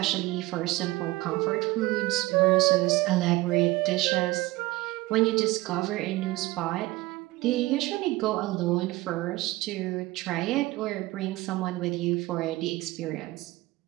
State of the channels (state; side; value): quieter; left; 19.6 dB